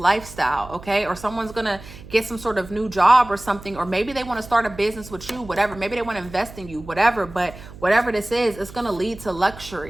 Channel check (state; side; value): noise; right; hum, 17 dB below the sound